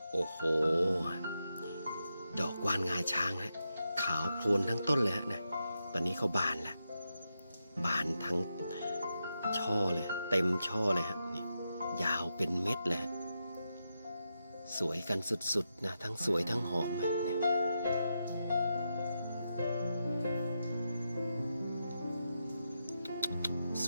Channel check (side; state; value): both; inverted; correlation -0.86